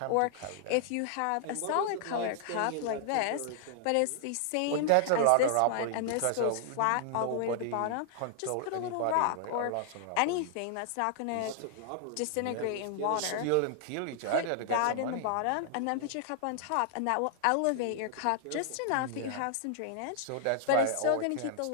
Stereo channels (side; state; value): both; different; correlation -0.01